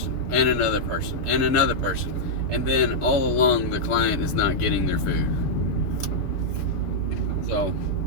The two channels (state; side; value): late; right; 7.0 ms